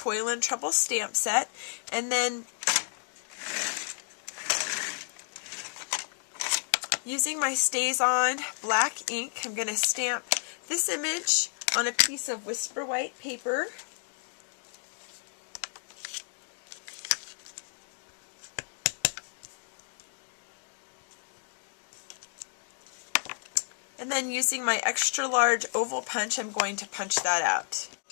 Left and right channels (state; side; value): silent; right; 57 dB below the other